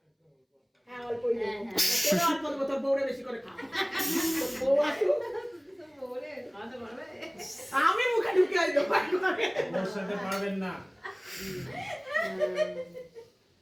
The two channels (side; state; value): both; identical; correlation 1.00